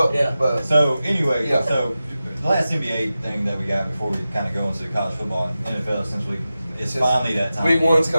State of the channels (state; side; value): inverted; both; correlation -0.94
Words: Yeah. But So anyway, Yeah. so the last NBA thing that we got before we kind of go into college football and NFL, since it's finally that time. Week 1's